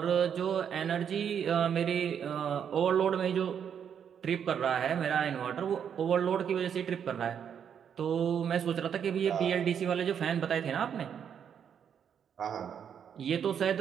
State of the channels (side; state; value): left; quieter; 8.1 dB